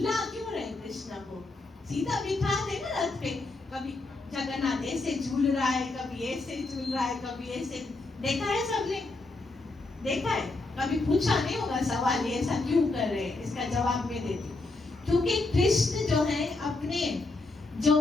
क्यों रहे, कृष्ण को सीधा बिठा दे ना रथ पे, कभी जगन्नाथ ऐसे झूल रहा है, कभी ऐसे झूल रहा है, कभी ऐसे। देखा है सबने, देखा है? कभी पूछा नहीं होगा सवाल ये ऐसा क्यों कर रहे हैं, इसका जवाब मैं देती हूँ। क्योंकि कृष्ण जो है अपने जो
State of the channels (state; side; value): quieter; right; 3.2 dB